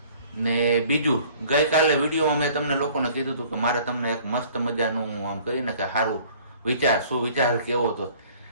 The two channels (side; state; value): both; inverted; correlation -0.53